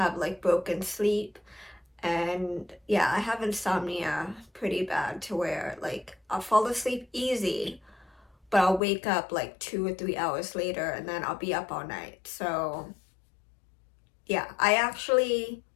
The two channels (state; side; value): drops out; right; at 8.8 s